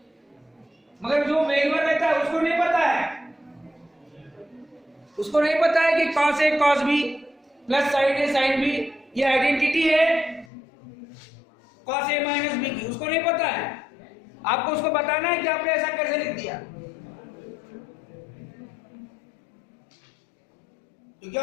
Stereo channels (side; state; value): right; drops out; at 10.5 s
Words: मगर जो मेलवर रहता है उसको नहीं पता है, उसको नहीं पता है कि cos a cos b plus sign a sin b ये आइडेंटिटी है cos a माइनस b की, उसको नहीं पता है, आपको उसको बताना है कि आपने ऐसा कैसे लिख दिया, क्योंकि